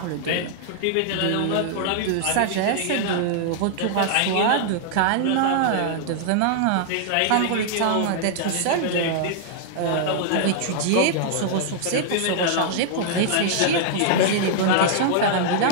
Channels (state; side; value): different; both; correlation -0.01